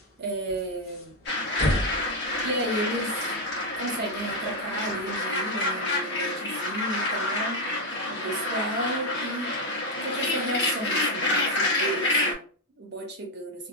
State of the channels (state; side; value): normal; both; correlation 0.03